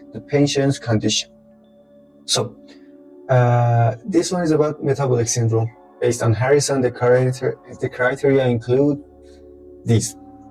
the patient's condition? So, this one is about metabolic syndrome. Based on Harrison, the criteria include these:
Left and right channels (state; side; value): identical; both; correlation 1.00